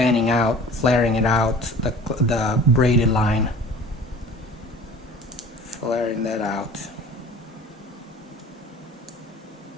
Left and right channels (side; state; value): both; normal; correlation 0.44